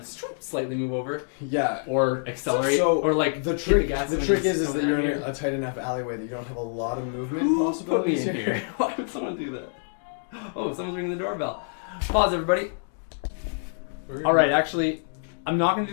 slightly move over Yeah. or accelerate So or like the hit trick, gas the when trick he's is coming that you're at in me. a tight enough alleyway that you don't have a lot of movement Who put me possibilities in here? Why would someone do that? Oh, someone's ringing the doorbell. Pause, everybody. All right, actually, I'm not gonna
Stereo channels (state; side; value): silent; right; digital silence